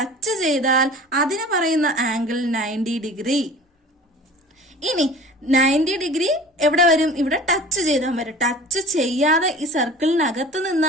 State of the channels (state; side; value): normal; both; correlation 0.41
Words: ചെയ്താൽ അതിന് പറയുന്ന ആംഗിൾ 90 ഡിഗ്രി. ഇനി 90 ഡിഗ്രി എവിടെ വരും? ഇവിടെ ടച്ച് ചെയ്താൽ വരും. ടച്ച് ചെയ്യാതെ ഈ സർക്കിളിനകത്ത്